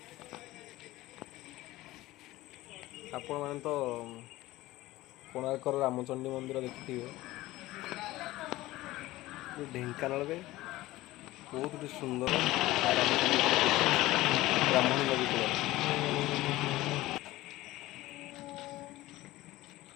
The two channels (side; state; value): right; quieter; 17.6 dB